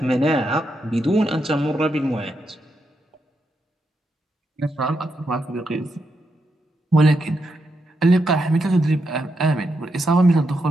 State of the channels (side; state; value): both; normal; correlation 0.83